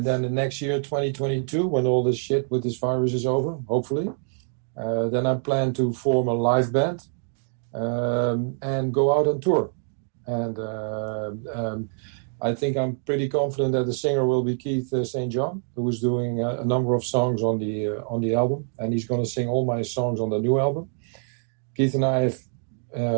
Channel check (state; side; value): silent; left; 62 dB below the other